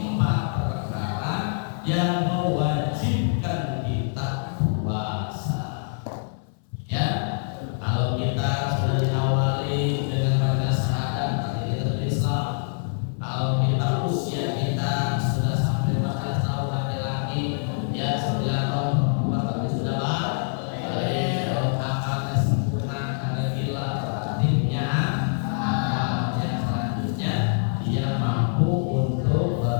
perkara yang mewajibkan kita puasa. Ya, kalau kita sudah diawali dengan baca syahadat, berarti kita sudah Islam. Kalau kita usia kita sudah sampai 14 tahun laki-laki, ya 9 tahun perempuan, tapi sudah balik. Kalau akalnya sempurna, karena gila, berarti punya akal. Yang selanjutnya dia mampu untuk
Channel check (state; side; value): silent; right; 58 dB below the other